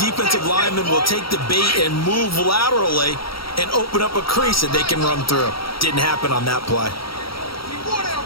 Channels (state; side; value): late; right; 0.75 ms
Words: linemen will take the bait and move laterally and open up a crease that they can run through. Didn't happen on that play.